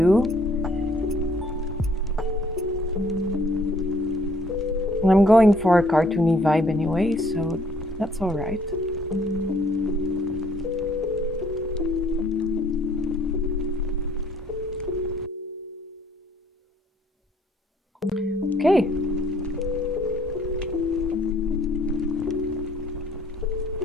I'm going for a cartoony vibe anyway, so that's all right. Okay.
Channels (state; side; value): normal; both; correlation 0.62